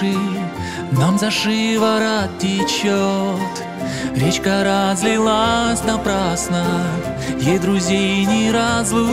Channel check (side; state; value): both; identical; correlation 1.00